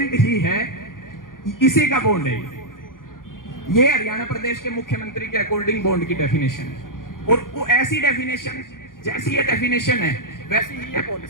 ही है, इसी का बॉन्ड है। ये हरियाणा प्रदेश के मुख्यमंत्री के अकॉर्डिंग बॉन्ड की डेफिनेशन है, और वो ऐसी डेफिनेशन, जैसी ये डेफिनेशन है वैसी ही ये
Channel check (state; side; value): late; right; 0.90 ms